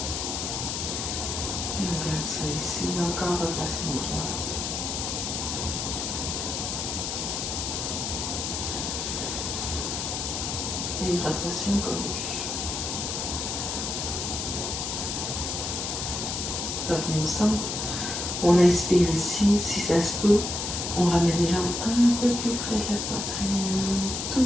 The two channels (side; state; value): left; noise; hiss, 3 dB below the sound